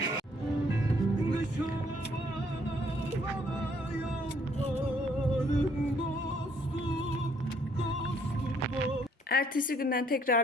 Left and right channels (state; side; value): normal; both; correlation 0.66